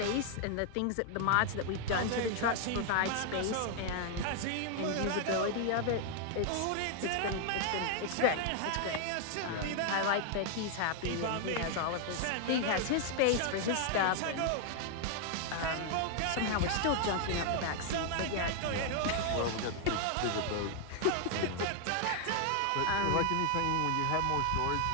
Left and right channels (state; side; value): different; both; correlation 0.00